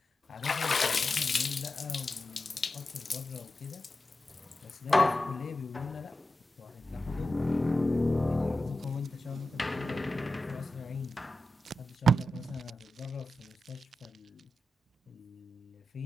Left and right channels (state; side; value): normal; both; correlation 0.91